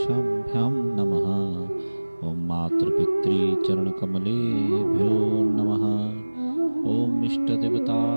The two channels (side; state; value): both; inverted; correlation -1.00